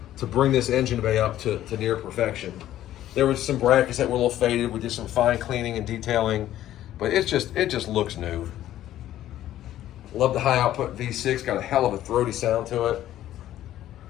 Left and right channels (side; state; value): right; quieter; 12.9 dB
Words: bring this engine bay up to near perfection. There was some brackets that were a little faded. We did some fine cleaning and detailing, but it just looks new. Love the high output V6, got a hell of a throaty sound to it.